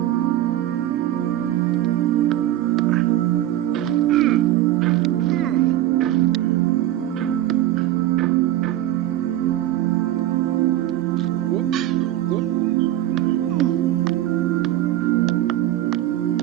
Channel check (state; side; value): quieter; left; 13.4 dB